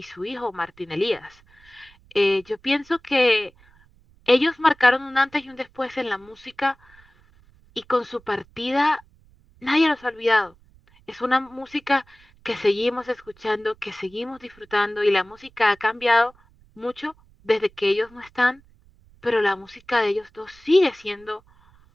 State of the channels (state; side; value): noise; right; rumble, 29 dB below the sound